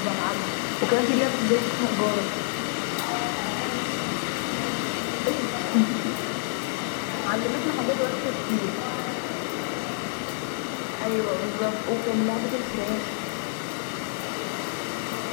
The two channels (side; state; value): right; silent; 60 dB below the other